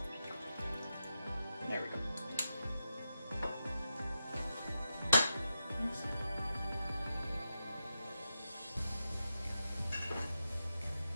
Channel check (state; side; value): inverted; both; correlation -0.89